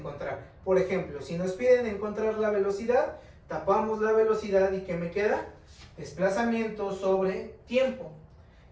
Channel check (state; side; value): identical; both; correlation 1.00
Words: Por ejemplo, si nos piden encontrar la velocidad, tapamos la velocidad y ¿qué me queda? Desplazamiento sobre tiempo.